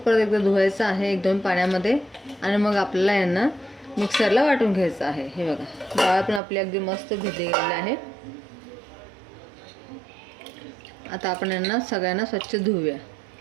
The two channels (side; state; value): left; drops out; at 6.4 s